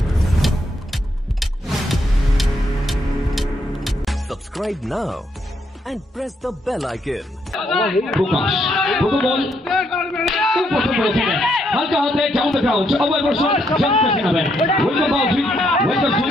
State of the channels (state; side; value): normal; both; correlation 0.75